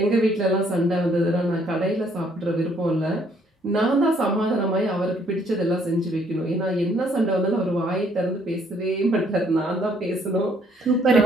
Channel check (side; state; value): both; normal; correlation 0.65